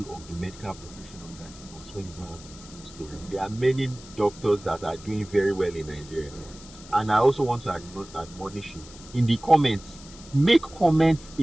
of the medical profession on that bus when you don't have the full story. There are many doctors that are doing very well in Nigeria. And I also want to admonish you in the comments. Make comments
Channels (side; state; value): left; noise; hiss, 19 dB below the sound